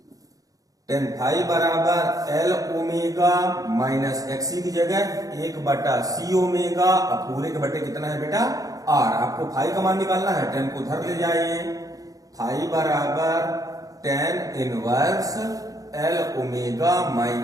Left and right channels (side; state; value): left; late; 0.17 ms